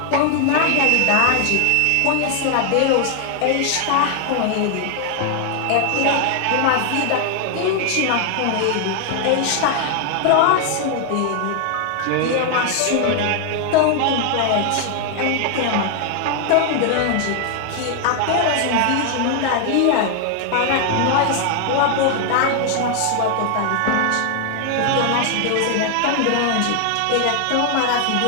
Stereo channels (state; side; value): different; both; correlation 0.00